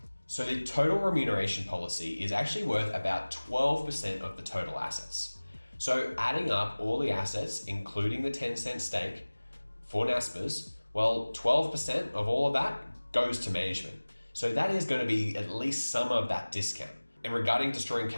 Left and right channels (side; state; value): both; inverted; correlation -1.00